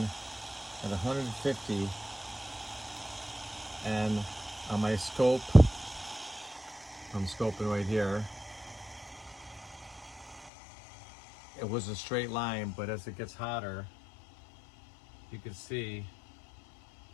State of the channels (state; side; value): drops out; right; at 10.5 s